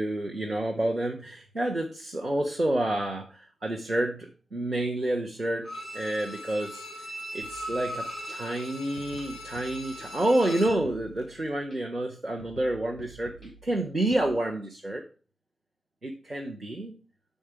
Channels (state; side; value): normal; both; correlation 0.90